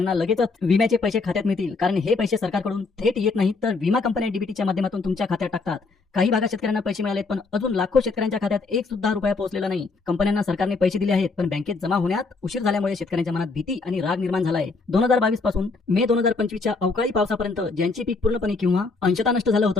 लगेचच विम्याचे पैसे खात्यात मिळतील, कारण हे पैसे सरकारकडून थेट येत नाहीत तर विमा कंपन्या डीबीटीच्या माध्यमातून तुमच्या खात्यात टाकतात. काही भागात शेतकऱ्यांना पैसे मिळालेत पण अजून लाखो शेतकऱ्यांच्या खात्यात एक सुद्धा रुपया पोहोचलेला नाही. कंपन्यांना सरकारने पैसे दिले आहेत पण बँकेत जमा होण्यात उशीर झाल्यामुळे शेतकऱ्यांच्या मनात भीती आणि राग निर्माण झाला आहे. 2022 पासून मे 2025च्या अवकाळी पावसापर्यंत ज्यांचे पीक पूर्णपणे किंवा अंशतः नष्ट झालं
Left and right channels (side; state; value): right; quieter; 4.1 dB